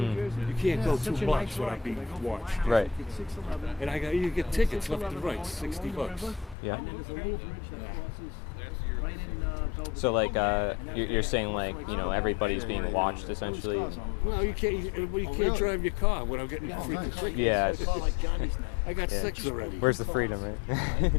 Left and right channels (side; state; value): right; drops out; at 6.6 s